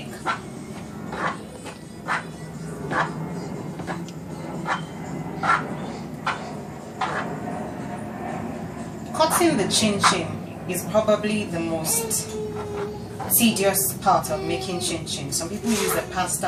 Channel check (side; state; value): both; identical; correlation 1.00